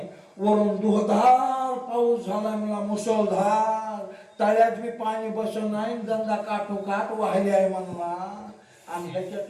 वरून दुधार पाऊस झाला, मला मुसळधार, तळ्यात बी पाणी बसत नाही, गंगा काठोकाठ वाहिले आहे म्हणला. आणि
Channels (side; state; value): both; identical; correlation 1.00